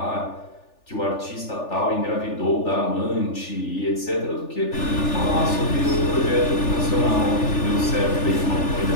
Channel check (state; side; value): late; right; 3.4 ms